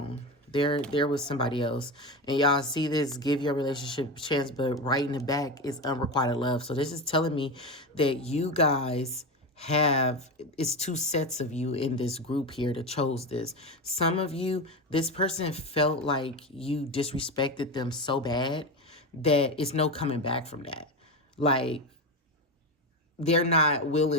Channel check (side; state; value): both; normal; correlation 0.19